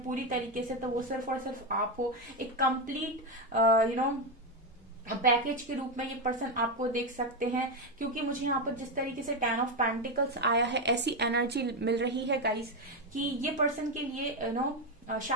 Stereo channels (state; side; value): normal; both; correlation 0.08